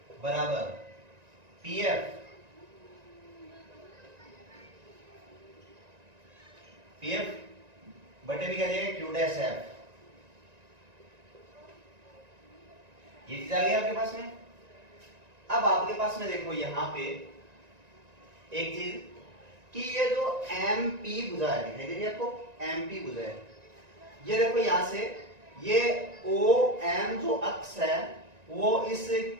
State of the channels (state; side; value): late; left; 1.9 ms